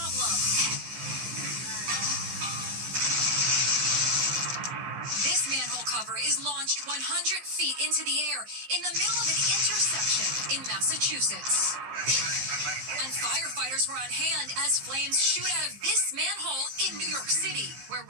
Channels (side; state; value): left; late; 15 ms